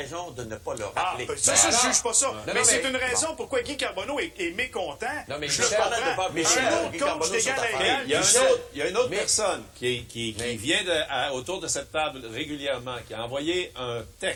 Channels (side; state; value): both; identical; correlation 1.00